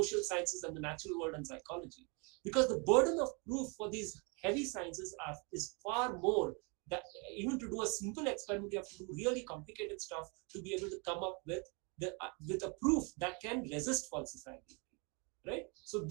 sciences and the natural world and psychology, because the burden of proof for these heavy sciences is far more. That even to do a simple experiment, you have to do really complicated stuff to be able to come up with a proof that can resist falsifiability, right? So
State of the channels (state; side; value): quieter; left; 32.7 dB